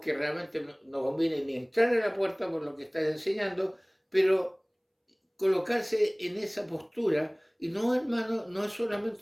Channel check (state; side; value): identical; both; correlation 1.00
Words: que realmente no conviene ni entrar a la puerta por lo que están enseñando, pero colocarse en esa postura, y no, hermano, no es